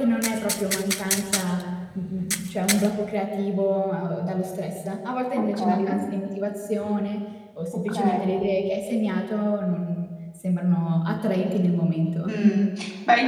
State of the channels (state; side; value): identical; both; correlation 1.00